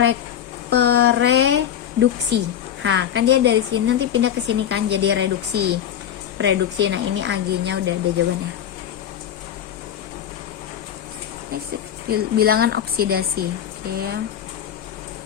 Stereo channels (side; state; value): right; quieter; 9.9 dB